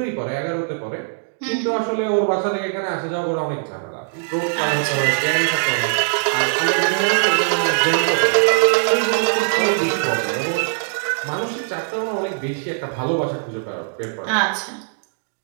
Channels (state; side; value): silent; left; 65 dB below the other